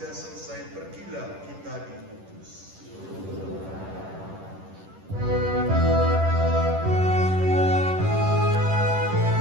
selesai. Pergilah kita diutus.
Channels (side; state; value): left; late; 10 ms